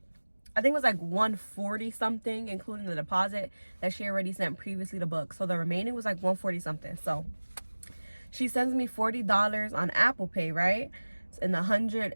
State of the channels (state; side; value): inverted; both; correlation -1.00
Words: I think it was like 140 something, including the deposit that she already sent previously to book. So the remaining was like 140 something. So she sends me $40 on Apple Pay, right? And the 100